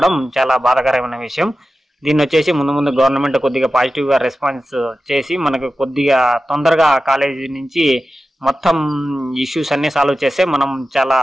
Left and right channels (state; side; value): normal; both; correlation 0.94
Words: చాలా బాధాకరమైన విషయం. దీన్ని వచ్చేసి ముందు గవర్నమెంట్ కొద్దిగా పాజిటివ్గా రెస్పాన్స్ చేసి మనకు కొద్దిగా తొందరగా కాలేజీ నుంచి మొత్తం ఇష్యూస్ అన్నీ సాల్వ్ చేస్తే మనం చాలా